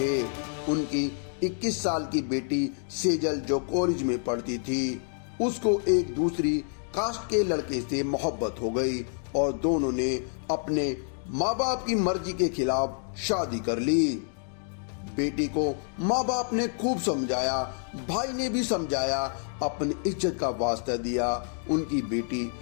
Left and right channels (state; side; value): silent; right; 59 dB below the other